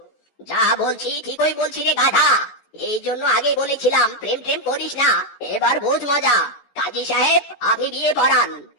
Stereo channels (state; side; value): late; right; 14 ms